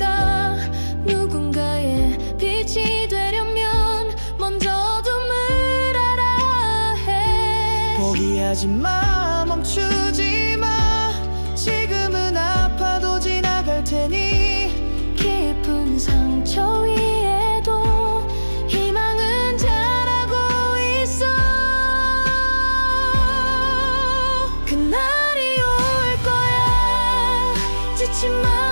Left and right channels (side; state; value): both; inverted; correlation -1.00